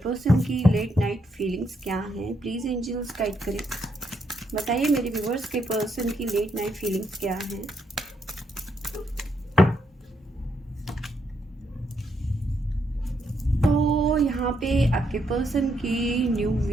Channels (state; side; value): normal; both; correlation 0.77